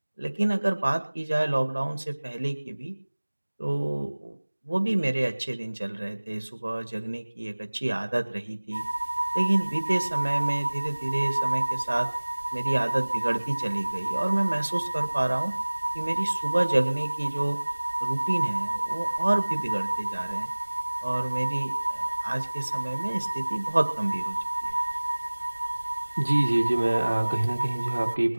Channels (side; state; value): both; inverted; correlation -1.00